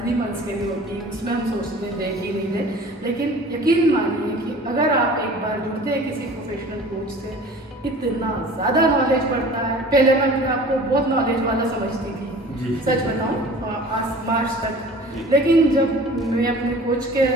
मंथ्स के लिए होती है, उसमें हम सोचते हैं देख ही नहीं दे। लेकिन यकीन मानिए कि अगर आप एक बार जुड़ते हैं किसी प्रोफेशनल कोच से, इतना ज़्यादा नॉलेज बढ़ता है। पहले मैं अपने आप को बहुत नॉलेज वाला समझती थी, सच बताऊँ मार्च तक। लेकिन जब मैं अपने कोच के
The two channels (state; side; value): normal; both; correlation 0.44